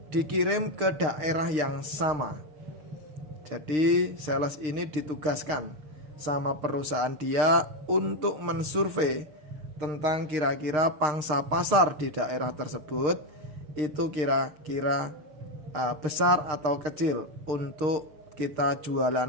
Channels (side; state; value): left; late; 6.5 ms